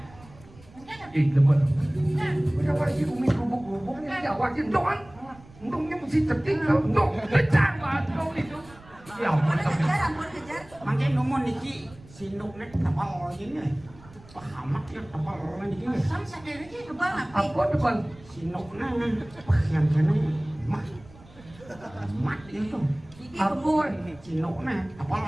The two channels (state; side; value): noise; right; rumble, 23 dB below the sound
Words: Ih, lemot. Kenapa sih umi gubuk-gubuknya jawakin doang? Untungnya mesti cetik kalau untuk pecah banget itu. Ya ampun. Ampun kejar. Mangke nomor niki sinuknya tapal ini. Pahamak ya tapal niki. Sam sadar aja. Kebal apa? Apa depan? Sinuknya yang kene mah. Mat itu. Iki Ampun. Sinuknya tapal.